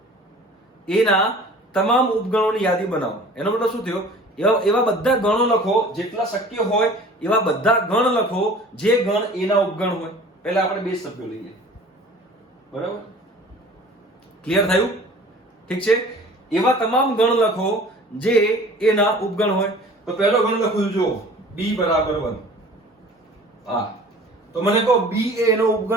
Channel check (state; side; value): normal; both; correlation 0.46